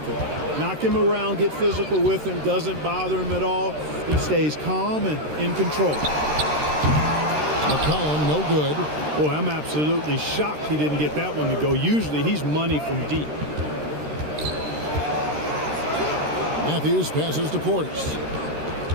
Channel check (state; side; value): late; left; 13 ms